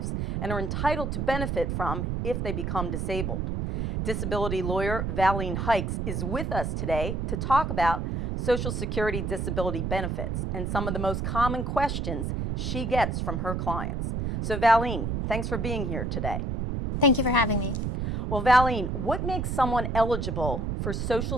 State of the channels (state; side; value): noise; right; rumble, 2 dB below the sound